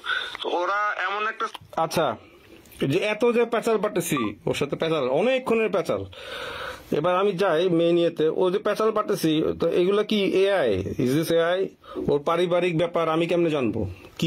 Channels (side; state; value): both; identical; correlation 1.00